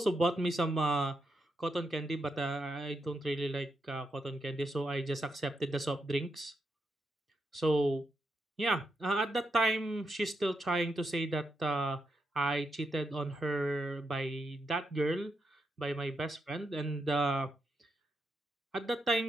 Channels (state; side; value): normal; both; correlation 0.83